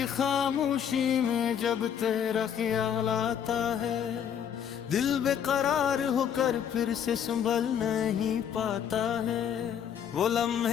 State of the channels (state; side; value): quieter; right; 8.6 dB